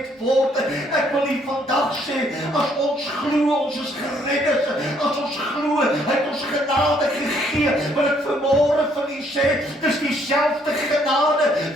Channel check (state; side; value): normal; both; correlation 0.67